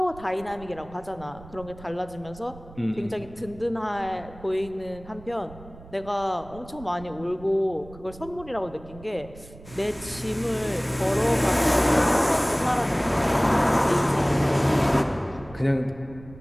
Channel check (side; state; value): right; noise; rumble, 19 dB below the sound